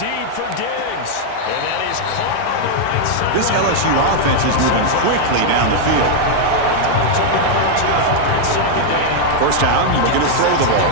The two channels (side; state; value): both; different; correlation 0.00